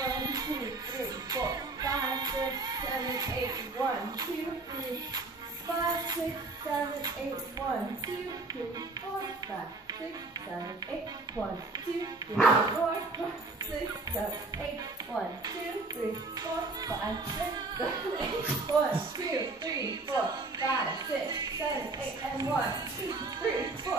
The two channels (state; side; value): quieter; left; 3.3 dB